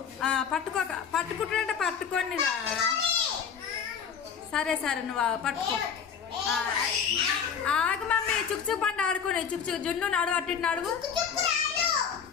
పట్టుకోక, పట్టుకుంటుంటే పట్టుకోండి రా. సరే సరే నువ్వు పట్టుకో. ఆగు మమ్మీ, చుక్చుక్ పండు ఆడుకోండి. చుక్చుక్ జున్ను నడువు, అట్టి నడువు.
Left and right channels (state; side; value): quieter; right; 7.0 dB